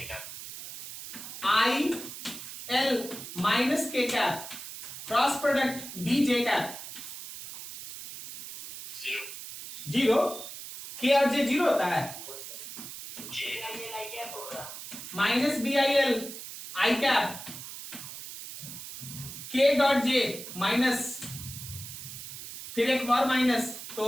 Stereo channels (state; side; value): noise; right; hiss, 11 dB below the sound